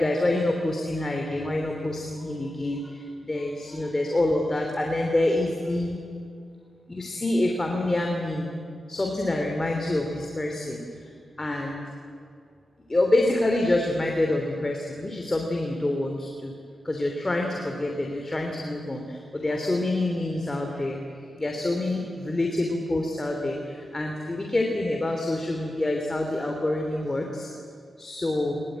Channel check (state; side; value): normal; both; correlation 0.92